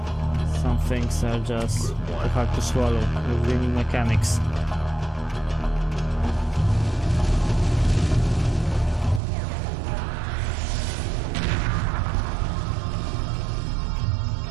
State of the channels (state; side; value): drops out; left; at 9.2 s